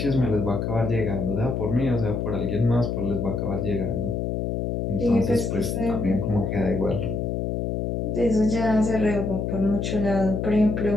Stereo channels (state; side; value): noise; left; hum, 1 dB below the sound